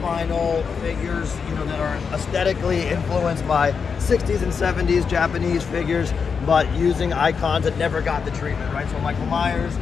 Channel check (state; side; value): quieter; right; 5.9 dB